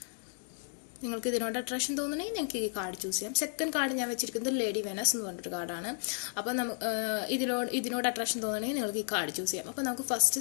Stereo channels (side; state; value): right; silent; 56 dB below the other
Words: നിങ്ങൾക്ക് ഇതിനോട് അട്രാക്ഷൻ തോന്നണമെങ്കിൽ ഞങ്ങൾക്ക് ഈ കാർഡ് ചൂസ് ചെയ്യാം. സെക്കൻഡ് കാർഡ് ഞാൻ വെച്ചിരിക്കുന്നത് ലേഡി വെനസ് എന്ന് പറഞ്ഞൊരു കാർഡാണ്. അപ്പോൾ ഇതിനോട് അട്രാക്ഷൻ തോന്നണമെങ്കിൽ നിങ്ങൾക്ക് ഈ കാർഡ് ചൂസ് ചെയ്യാം. അപ്പോൾ നമുക്ക് ഫസ്റ്റ്